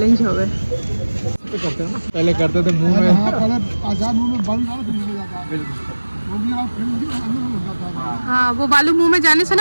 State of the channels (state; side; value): inverted; both; correlation -1.00